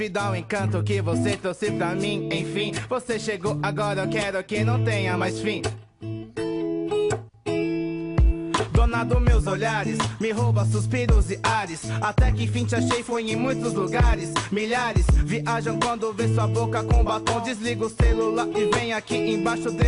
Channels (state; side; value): identical; both; correlation 1.00